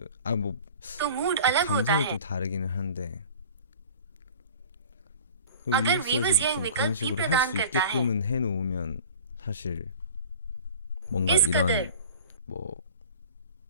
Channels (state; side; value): inverted; both; correlation -0.41